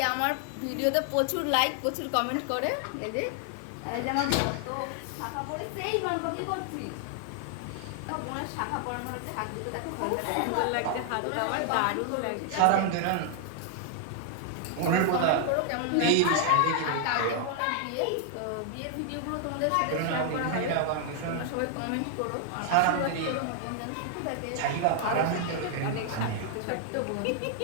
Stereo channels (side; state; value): both; different; correlation 0.00